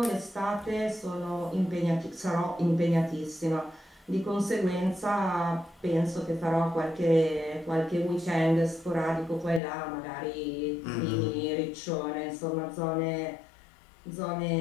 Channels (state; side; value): drops out; right; at 9.6 s